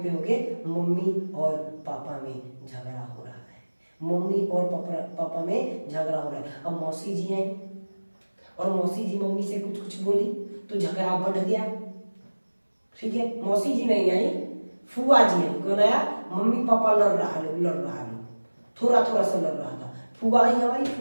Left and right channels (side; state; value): both; inverted; correlation -1.00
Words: होंगे मम्मी और पापा में झगड़ा हो रहा है, मम्मी और पापा में झगड़ा हो रहा है। अब मौसी जी आई और मौसी जी मम्मी से कुछ कुछ बोली तो झगड़ा बढ़ गया। ठीक है, मौसी जी नहीं आई, फुआ जी आई। कौन आया, मम्मी पापा लड़ रहा लो, थोड़ा थोड़ा सा लड़ रहा था। फुआ आई हमारी